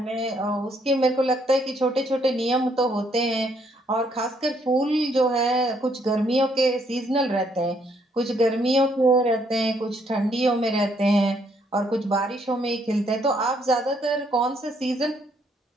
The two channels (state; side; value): normal; both; correlation 0.70